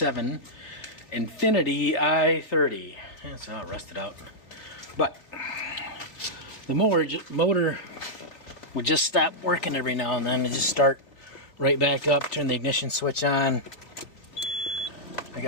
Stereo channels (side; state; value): right; late; 3.6 ms